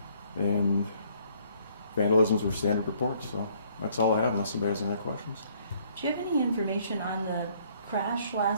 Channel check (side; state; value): both; inverted; correlation -0.64